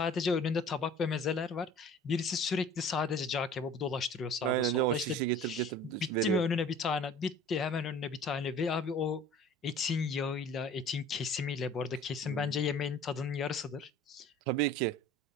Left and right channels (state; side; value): normal; both; correlation 0.46